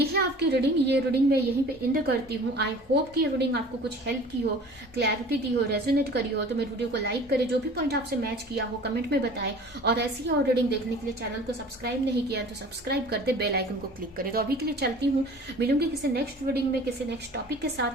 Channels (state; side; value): normal; both; correlation 0.45